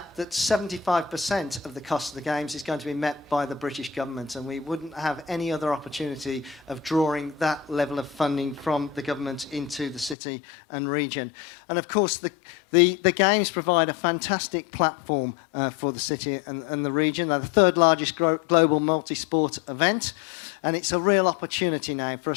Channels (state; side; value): drops out; right; at 10.2 s